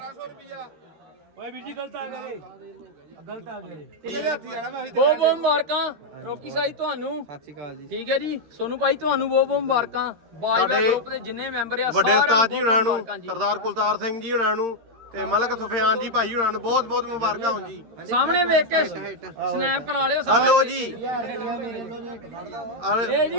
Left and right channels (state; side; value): late; left; 13 ms